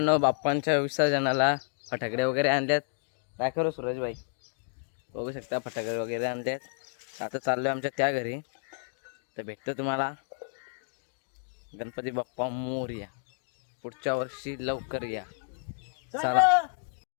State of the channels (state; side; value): silent; right; digital silence